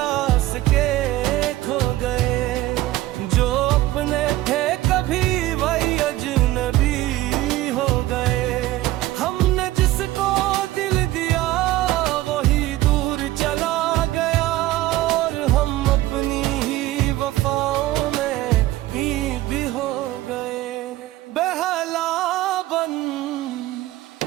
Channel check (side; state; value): left; quieter; 16.1 dB